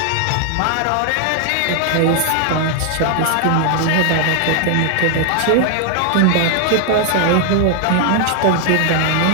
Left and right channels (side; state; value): both; different; correlation 0.00